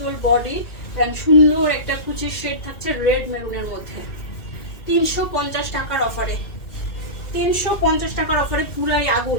বডি এন্ড সুন্দর একটা কুচির শেড থাকছে রেড মেরুনের মধ্যে। 350 টাকার অফারে, 350 টাকার অফারে পুরাই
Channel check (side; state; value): right; late; 2.4 ms